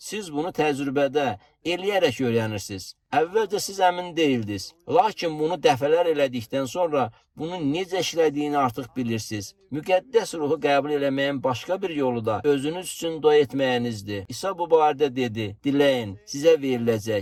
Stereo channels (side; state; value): both; identical; correlation 1.00